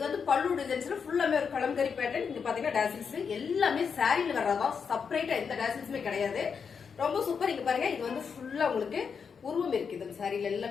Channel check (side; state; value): right; quieter; 6.2 dB